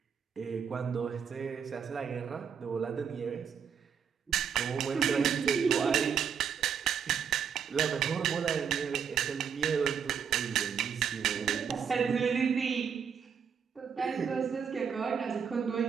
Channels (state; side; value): quieter; left; 7.2 dB